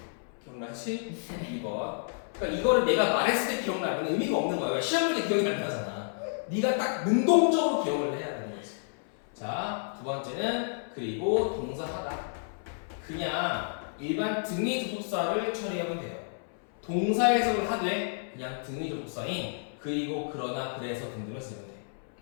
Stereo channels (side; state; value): right; silent; 57 dB below the other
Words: 기억나지? 2번. 그러니까 이거를 내가 말했을 때 기억나면 의미가 없는 거야. 시험 볼 때 기억이 안 나잖아. 네가 딱 능동적으로 기억을 해야 되는 거지. 자, 두 번째는 그리고 동사하다. 그냥 일반 등위 접속사를 처리하면 돼요. 동사 해석을 하되 그냥 등위 접속사인 그리고 그러나 그래서 등등을 쓰면 돼.